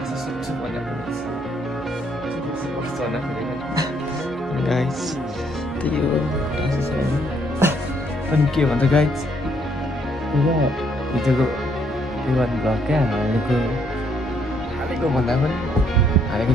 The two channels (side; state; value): both; normal; correlation 0.69